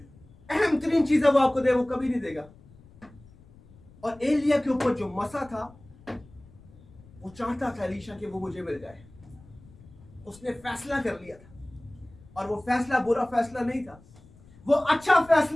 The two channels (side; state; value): left; noise; rumble, 24 dB below the sound